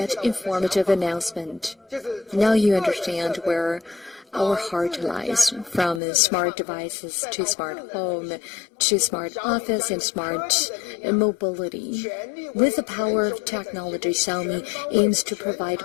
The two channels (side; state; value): right; drops out; at 6.0 s